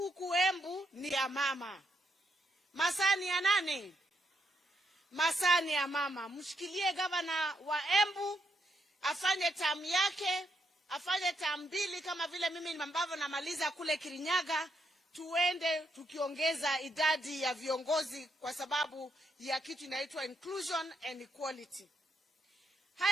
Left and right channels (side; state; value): both; normal; correlation 0.78